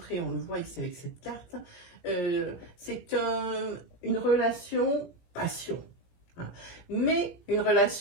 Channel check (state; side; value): late; right; 17 ms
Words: on le voit ici avec cette carte, c'est une relation passion. Hein. Mais une